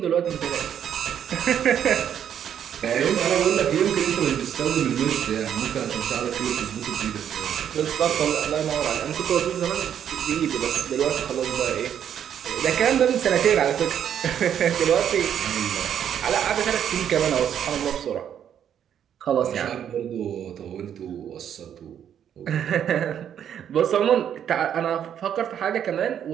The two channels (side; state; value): left; quieter; 9.2 dB